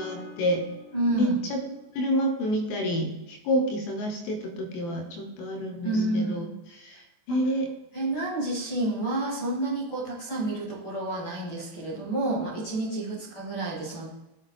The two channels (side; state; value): right; late; 24 ms